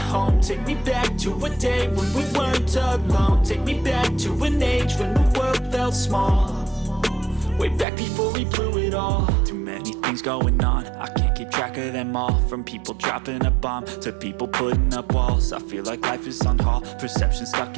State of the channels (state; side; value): drops out; left; at 7.9 s